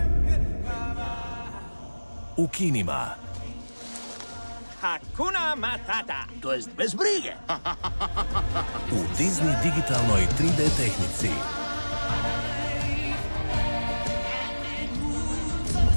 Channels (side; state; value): both; inverted; correlation -1.00